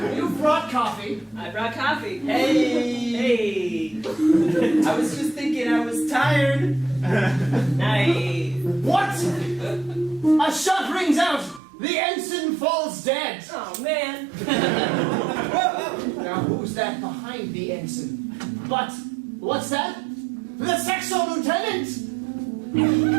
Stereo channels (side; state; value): left; drops out; at 11.6 s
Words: You brought coffee. I brought coffee. Hey! I was just thinking I was tired. Nice. What? A shot rings out. The ensign falls dead. Oh, man. Now who's that behind the ensign? But what's that? The Sexo lieutenant.